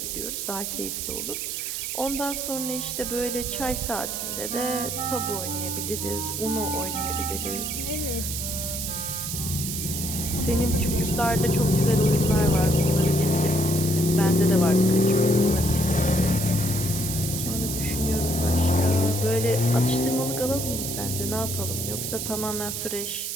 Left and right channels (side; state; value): right; noise; hiss, 4 dB below the sound